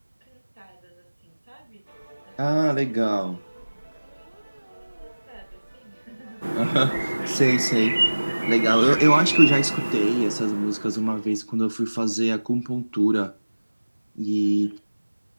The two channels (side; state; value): both; inverted; correlation -1.00